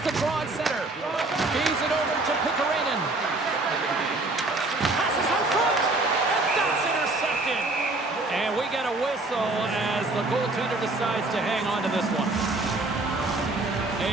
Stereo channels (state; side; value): quieter; left; 3.0 dB